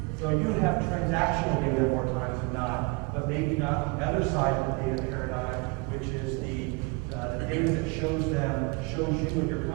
So you have transactional data more times than not, but maybe not the other side of the data paradigm, which is the data that shows you and your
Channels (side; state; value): left; quieter; 27.8 dB